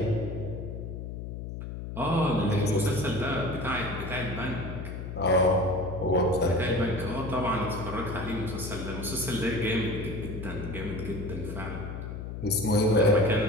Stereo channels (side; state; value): left; noise; hum, 7 dB below the sound